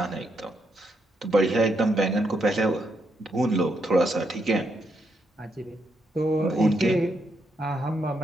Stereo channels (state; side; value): normal; both; correlation 0.79